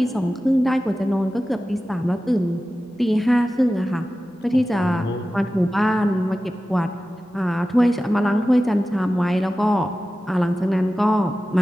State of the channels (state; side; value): normal; both; correlation 0.95